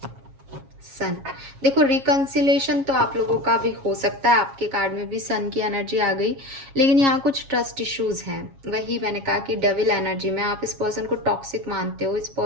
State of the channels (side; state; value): left; late; 7.3 ms